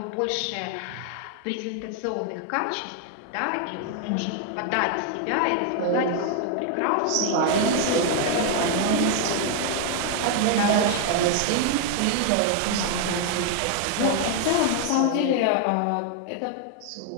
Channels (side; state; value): both; different; correlation 0.00